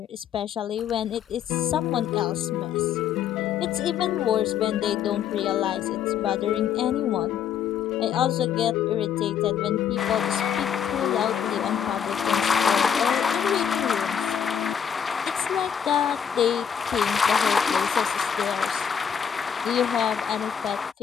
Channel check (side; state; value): right; quieter; 8.1 dB